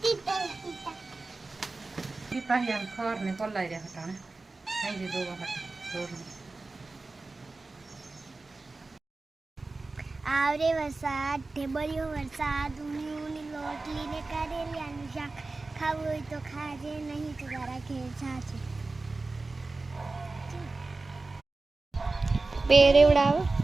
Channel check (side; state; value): left; quieter; 3.5 dB